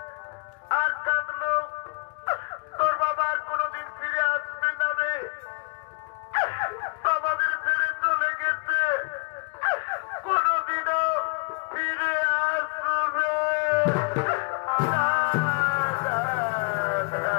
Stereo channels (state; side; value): quieter; right; 31.5 dB